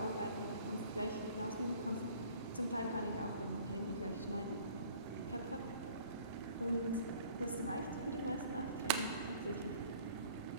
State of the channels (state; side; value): inverted; both; correlation -0.52